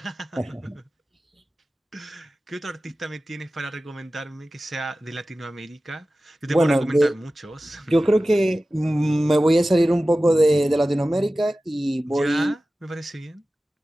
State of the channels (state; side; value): normal; both; correlation 0.96